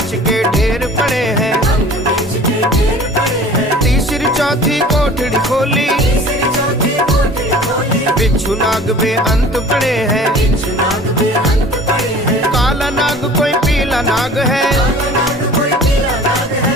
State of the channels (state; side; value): normal; both; correlation 0.45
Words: के ढेर पड़े हैं, भंग मिर्च के ढेर पड़े हैं, तीसरी चौथी कोठड़ी खोली, तीसरी चौथी कोठड़ी खोली, बिच्छू नाग में अंत पड़े हैं, बिच्छू नाग में अंत पड़े हैं, काला नाग कोई पीला नाग है, काला नाग कोई पीला नाग है,